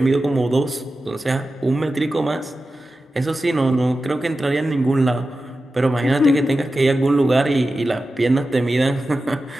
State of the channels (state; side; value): normal; both; correlation 0.93